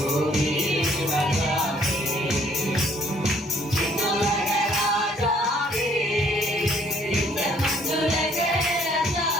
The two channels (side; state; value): both; normal; correlation 0.63